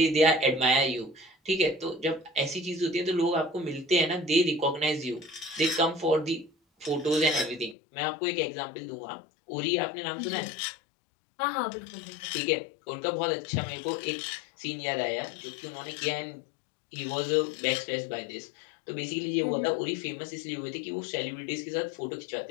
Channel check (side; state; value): right; drops out; at 7.8 s